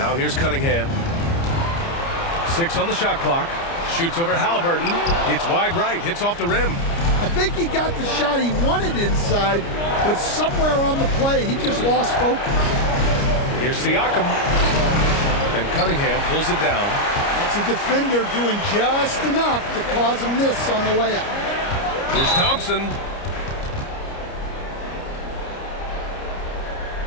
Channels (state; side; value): late; right; 29 ms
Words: here's Cunningham. 6 on the shot clock. Shoots over Halliburton. It's wide right. Hits off the rim. I think he got the shot he wanted inside, but somewhere on the play, he just lost focus. Here's Siakam. And Cunningham pulls it down. That's a defender doing just enough to cause a miss on the layup. Here's Thompson.